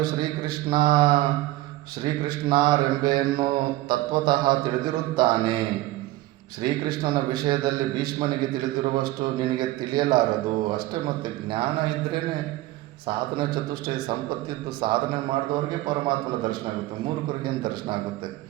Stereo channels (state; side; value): quieter; left; 17.3 dB